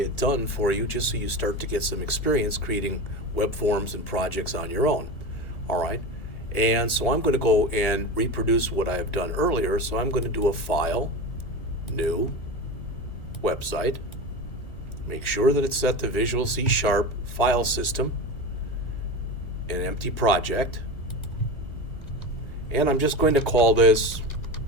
done for you just so you start to get some experience creating web forms and projects on your own. All right, and so I'm going to go and reproduce what I have done earlier. So I'm going to do a File, New, Website. Make sure that it's set to Visual C# File System, an empty project, and I'm just going to call this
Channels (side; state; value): right; late; 1.7 ms